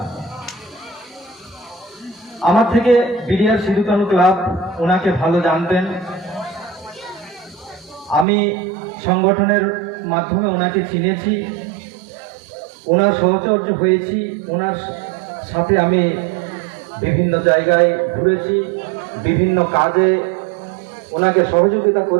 আমার থেকে বিডিআর সিধুকানু ক্লাব ওনাকে ভালো জানতেন। আমি সংগঠনের মাধ্যমে ওনাকে চিনেছি, ওনার সহচর্য হয়েছি, ওনার সাথে আমি বিভিন্ন জায়গায় ঘুরেছি, বিভিন্ন কাজে ওনাকে সহযোগিতা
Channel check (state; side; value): drops out; left; at 8.2 s